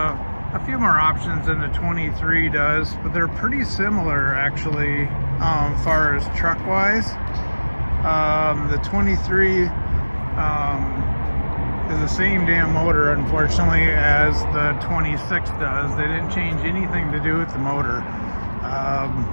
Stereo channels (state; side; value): inverted; both; correlation -1.00